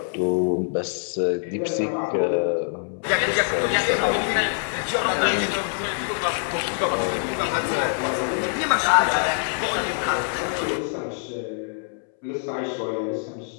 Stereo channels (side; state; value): right; silent; 62 dB below the other